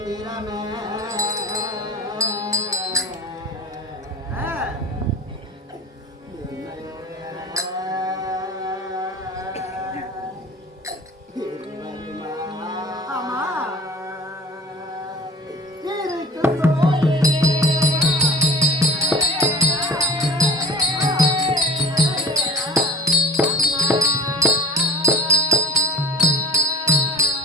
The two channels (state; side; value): normal; both; correlation 0.40